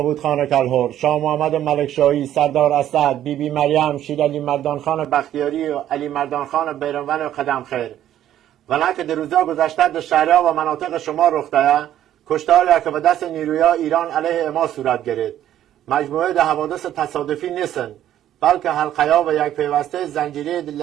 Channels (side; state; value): left; quieter; 11.7 dB